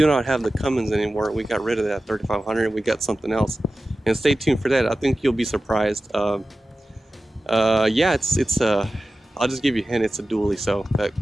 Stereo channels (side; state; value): both; normal; correlation 0.94